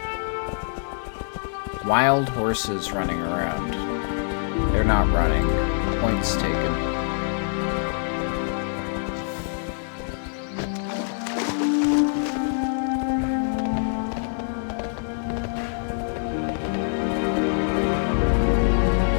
Wild horses running around. They're not running. Points taken.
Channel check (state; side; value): silent; right; digital silence